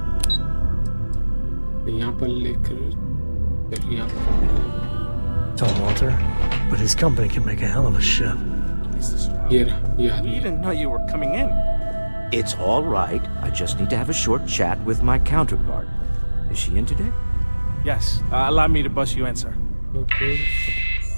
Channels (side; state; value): both; inverted; correlation -1.00